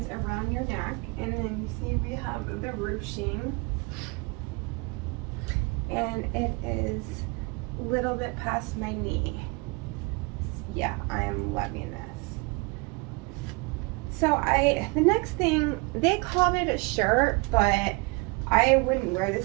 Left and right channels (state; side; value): quieter; left; 28.8 dB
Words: around your neck. And then you see we have the ruching, and it is a little bit past my knee. Yeah, I am loving this. So the next thing, they called it a shirt, but I wouldn't wear